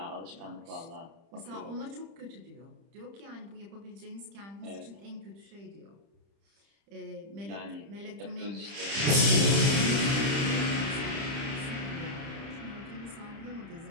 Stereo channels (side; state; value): left; late; 30 ms